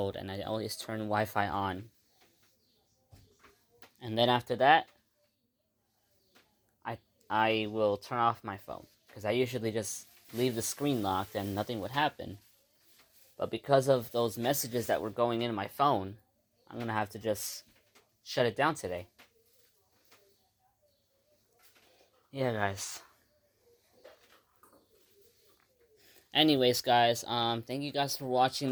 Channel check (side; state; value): both; identical; correlation 1.00